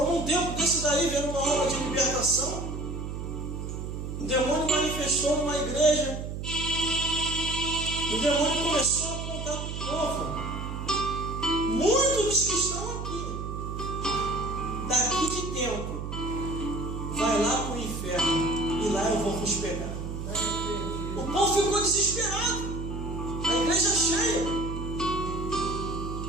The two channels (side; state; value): right; noise; hum, 6 dB below the sound